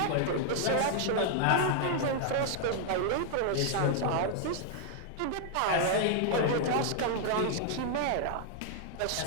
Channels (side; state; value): both; different; correlation -0.01